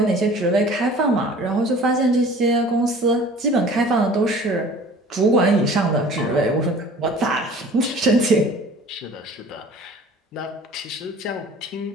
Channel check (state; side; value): normal; both; correlation 0.46